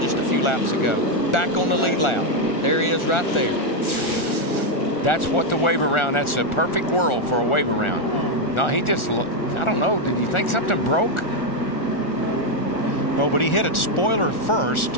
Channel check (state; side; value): late; right; 1.4 ms